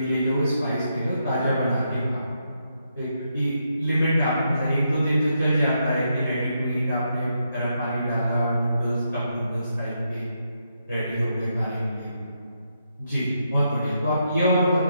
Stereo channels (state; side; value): inverted; both; correlation -0.81